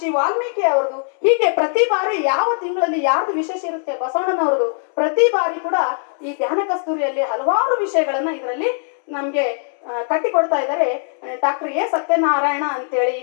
ವಾಲ್ಮೀಕಿ ಅವ್ರದ್ದು, ಹೀಗೆ ಪ್ರತಿ ಬಾರಿ ಯಾವ ತಿಂಗಳಲ್ಲಿ ಯಾರ್ದು ವಿಶೇಷ ಇರುತ್ತೆ, ಬಸವಣ್ಣನವ್ರದ್ದು, ಪ್ರತಿ ಬಾರಿ ಕೂಡ ಈ ಧ್ಯಾನ ಕಸ್ತೂರಿಯಲ್ಲಿ ಹಲವಾರು ವಿಷಯಗಳನ್ನ ಇದರಲ್ಲಿ ನಮ್ಗೆ ಕಟ್ಟಿಕೊಡ್ತಾ ಇದ್ದಾರೆ. ಡಾಕ್ಟರ್ ಎ ಸತ್ಯನಾರಾಯಣ ಅಂತೇಳಿ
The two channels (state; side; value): silent; right; 66 dB below the other